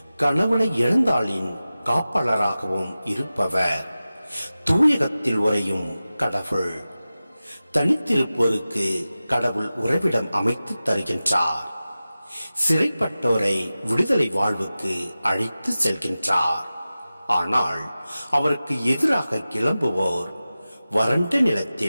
கணவனை இழந்தாளின் காப்பாளராகவும் இருப்பவர். தூயகத்தில் உறையும் கடவுள். தனித்திருப்போருக்கு கடவுள் உறைவிடம் அமைத்து தருகின்றார். சிறைப்பட்டோரை விடுதலை வாழ்வுக்கு அழைத்து செல்கின்றார். ஆனால் அவருக்கு எதிராக கிளம்புவோர் வறண்ட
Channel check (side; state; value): both; inverted; correlation -0.95